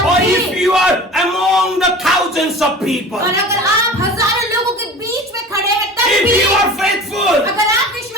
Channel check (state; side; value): normal; both; correlation 0.38